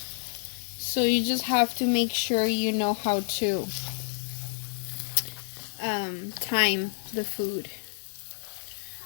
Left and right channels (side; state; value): right; silent; 59 dB below the other